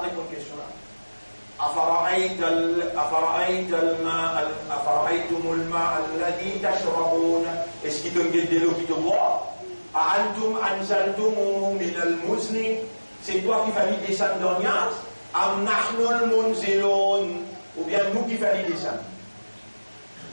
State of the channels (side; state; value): both; inverted; correlation -1.00